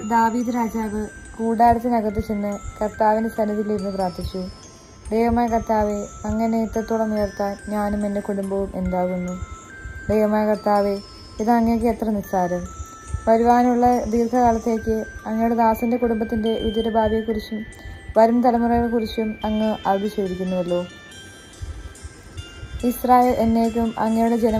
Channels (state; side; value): identical; both; correlation 1.00